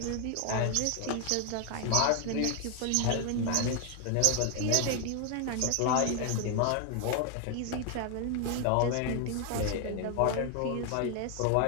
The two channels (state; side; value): different; both; correlation 0.00